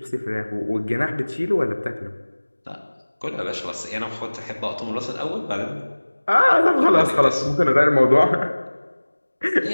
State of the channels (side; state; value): both; inverted; correlation -1.00